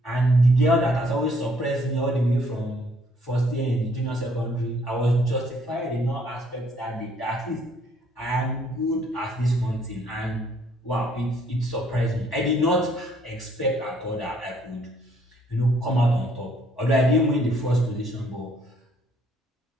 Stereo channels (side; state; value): both; normal; correlation 0.65